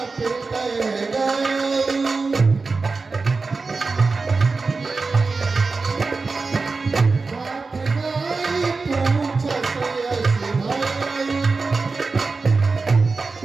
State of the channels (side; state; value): left; quieter; 4.1 dB